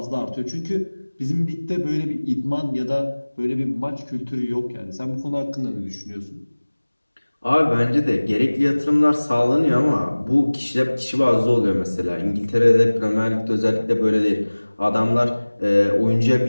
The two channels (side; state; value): both; inverted; correlation -1.00